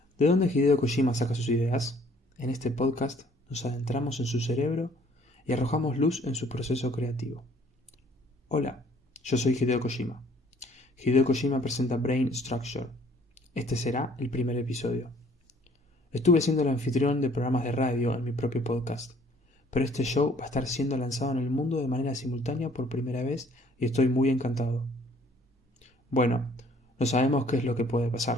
¿De dónde Hideo Kojima saca sus ideas? En este podcast nos adentramos en su cerebro y arrojamos luz en su proceso creativo. Hola, yo soy Hideo Kojima. Hideo Kojima presenta Brain Structure. Este será el primer episodio. Estuve siendo el anfitrión de programas de radio en mi propio podcast, pero este show va a estar siendo lanzado en el mundo de manera simultánea por primera vez y estoy muy encantado. Bueno, no sabemos qué es lo que puede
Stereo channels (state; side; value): normal; both; correlation 0.58